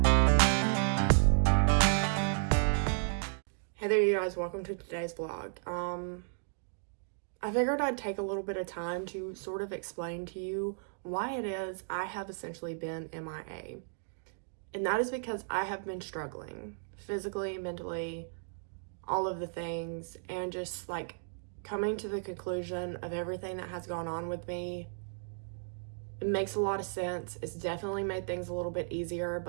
there, you guys, welcome to today's vlog. I figured I'd take a little bit of time to sort of explain to you why it is I have essentially been MIA. And that is because I have been struggling physically, mentally, all of the things, and just like coming to the conclusion of everything that has gone on with me. It makes a lot of sense. It's definitely made things a little bit easier,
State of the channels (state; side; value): silent; left; digital silence